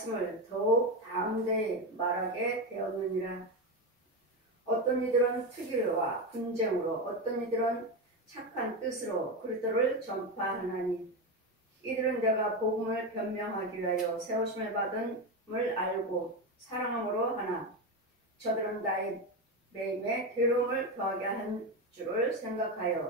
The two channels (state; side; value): normal; both; correlation 0.14